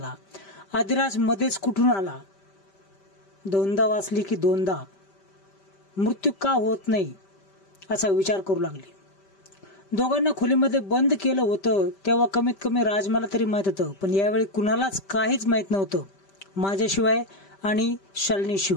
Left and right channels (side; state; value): right; late; 5.1 ms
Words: आदिराज मध्येच कुठून आला। दोनदा वाचली की दोनदा मृत्यू का होत नाही असा विचार करू लागली। दोघांना खोलीमध्ये बंद केलं होतं तेव्हा कमीत कमी राजमाला तरी माहित होतं, पण यावेळी कुणालाच काहीच माहित नव्हतं माझ्याशिवाय आणि